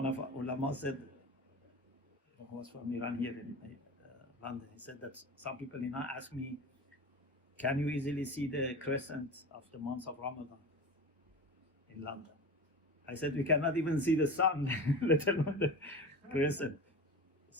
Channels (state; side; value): normal; both; correlation 0.31